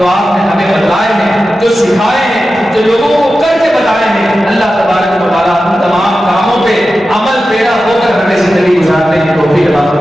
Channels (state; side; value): normal; both; correlation 0.93